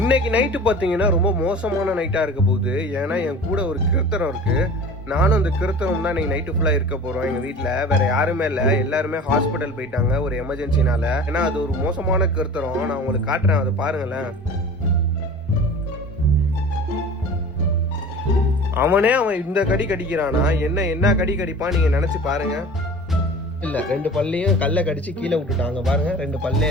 நைட்டு பார்த்தீங்கன்னா ரொம்ப மோசமான நைட்டாக இருக்க போகுது. ஏன்னா என் கூட ஒரு கிருத்தரம் இருக்குது. நானும் அந்த கிருத்தரம் தான் இன்னைக்கு நைட்டு ஃபுல்லாக இருக்க போகிறோம். எங்கள் வீட்டில் வேறு யாருமே இல்லை, எல்லாருமே ஹாஸ்பிட்டல் போயிட்டாங்க ஒரு எமர்ஜென்சினால. ஏன்னா அது ஒரு மோசமான கிருத்தரம். நான் உங்களுக்கு காட்டுறேன், அதை பாருங்களேன். அவன் இந்த கடி கடிக்கிறானா, என்ன கடி கடிப்பான் நீங்கள் நினச்சி பாருங்க. இல்லை, 2 பல்லையும் கல்லை கடிச்சு கீழே விட்டுட்டாங்க பாருங்க. 2 பல்லே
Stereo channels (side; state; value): both; normal; correlation 0.40